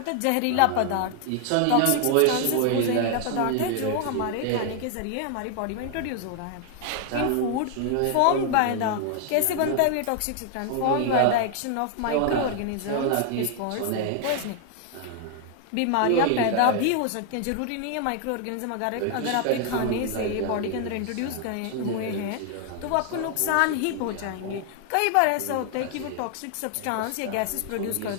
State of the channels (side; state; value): both; different; correlation 0.00